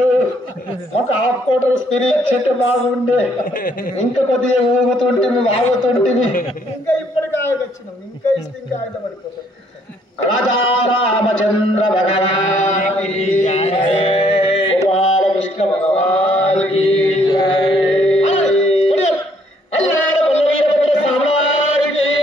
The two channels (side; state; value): both; normal; correlation 0.66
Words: ఒక హాఫ్ కోటర్ స్త్రీ ఇచ్చేటే బాగుండే ఇంకా కొద్దిగా ఊగుతుంటే ఆగుతుంటే ఇంకా ఇప్పటికి ఆగొచ్చినాం ఇంకా ఇస్తే ఇంకా ఆయుధ పడిపోతాం రాజా రామచంద్ర భగవాన్